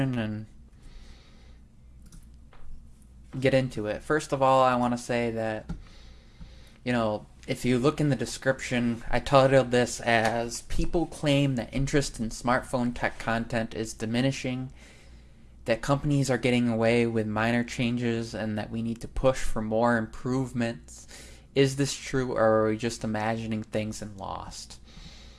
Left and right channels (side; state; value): both; identical; correlation 1.00